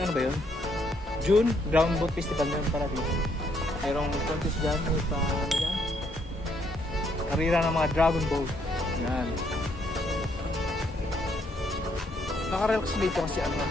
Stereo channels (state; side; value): normal; both; correlation 0.71